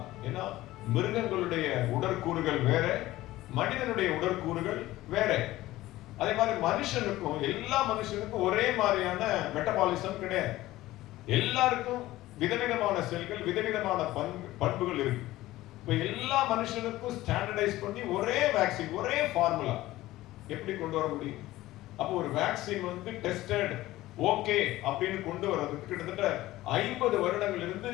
ஏன்னா மிருகங்களுடைய உடற்கூறுகள் வேற, மனிதனுடைய உடற்கூறுகள் வேற. அதே மாதிரி மனுஷனுக்கும், எல்லா மனுஷனுக்கும் ஒரே மாதிரியான மெட்டபாலிசம் கிடையாது. எல்லாருக்கும் விதவிதமான செல்கள், விதவிதமான பண்புகள் இருக்கு. இப்ப எல்லா மனுஷனுக்கும் ஸ்டாண்டர்டைஸ் பண்ணி ஒரே வேக்சின், ஒரே ஃபார்முலா எப்படி கொண்டு வர முடியும்? அப்போ ஒரு வேக்சின் வந்து டெஸ்டட் ஓகே அப்படின்னு கொண்டு வர்றதுக்கு கிட்டத்தட்ட 50 வருடங்கள் இருந்து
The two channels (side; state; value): right; quieter; 16.6 dB